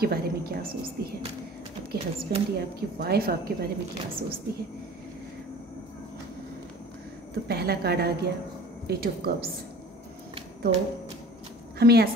बारे में क्या सोचती है, आपके हस्बैंड या आपकी वाइफ आपके बारे में क्या सोचती है। तो पहला कार्ड आ गया 8 ऑफ कप्स। तो हमें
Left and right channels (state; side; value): normal; both; correlation 0.44